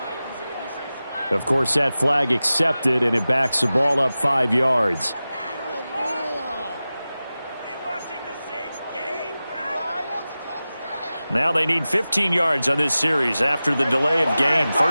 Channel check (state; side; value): inverted; both; correlation -0.95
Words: Of course, that flag accepted, and it backs the ball up 5 yards. Now they need 15 yards on this series after the delay of game.